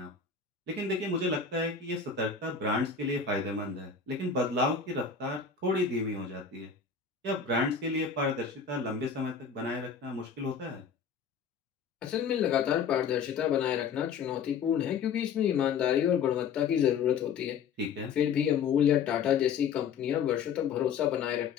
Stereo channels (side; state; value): right; quieter; 6.2 dB